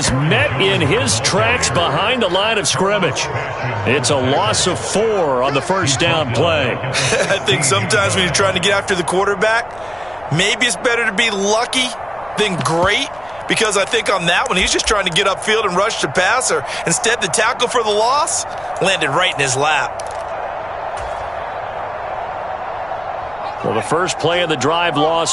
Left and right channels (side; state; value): left; noise; rumble, 24 dB below the sound